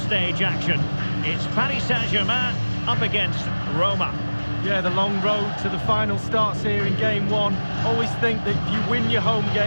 action. It's Paris Saint-Germain up against Roma. Yeah, the long road to the final starts here in game one. Always think that if you win your home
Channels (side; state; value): both; inverted; correlation -1.00